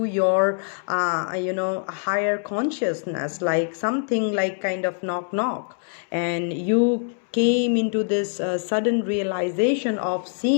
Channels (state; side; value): silent; right; 63 dB below the other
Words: your higher consciousness, like something like kind of knock, and you came into this sudden realization of